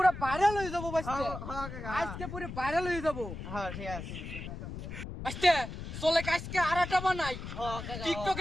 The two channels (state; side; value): noise; left; rumble, 8 dB below the sound